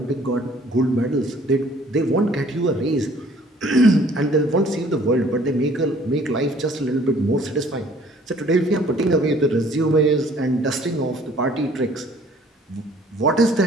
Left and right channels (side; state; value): both; normal; correlation 0.56